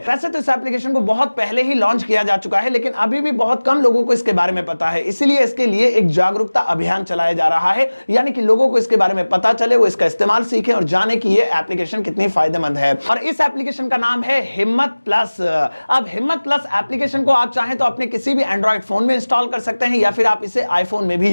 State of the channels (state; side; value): inverted; both; correlation -1.00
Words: वैसे तो इस एप्लीकेशन को बहुत पहले ही लॉन्च किया जा चुका है, लेकिन अभी भी बहुत कम लोगों को इसके बारे में पता है। इसलिए इसके लिए एक जागरूकता अभियान चलाया जा रहा है, यानी कि लोगों को इसके बारे में पता चले, वो इसका इस्तेमाल सीखें और जाने कि ये एप्लीकेशन कितनी फायदेमंद है। और इस एप्लीकेशन का नाम है हिम्मत प्लस। अब हिम्मत प्लस एप्लीकेशन को आप चाहें तो अपने किसी भी एंड्रॉइड फोन में इंस्टॉल कर सकते हैं या फिर आप इसे आईफोन में भी